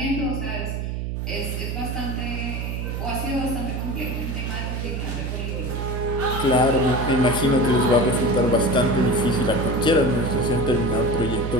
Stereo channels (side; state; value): right; noise; hum, 3 dB below the sound